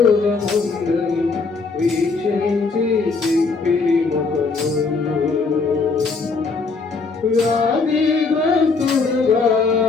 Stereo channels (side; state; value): right; quieter; 4.3 dB